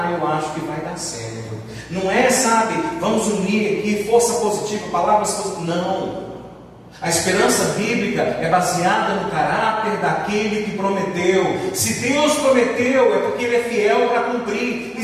acho que vai dar certo. Não é, sabe, vamos unir aqui força positiva, palavras positivas. Não. A esperança bíblica é baseada no caráter daquele que prometeu. Se Deus prometeu, é porque Ele é fiel para cumprir. E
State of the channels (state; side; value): identical; both; correlation 1.00